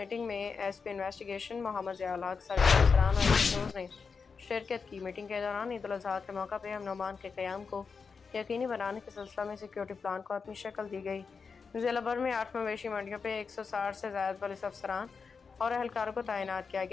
में एसपी इन्वेस्टिगेशन मोहम्मद ज़ियाउल हक, सर्कल अफसरान और एसएचओज़ ने शिरकत की। मीटिंग के दौरान ईद उल अज़हा के मौका पे अमन के क़याम को यकीनी बनाने के सिलसिले में सिक्योरिटी प्लान को अपनी शक्ल दी गई। जिला भर में 8 मवेशी मंडियों पे 160 से ज़्यादा पुलिस अफसरान और एहलकारों को तैनात किया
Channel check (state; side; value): quieter; right; 5.3 dB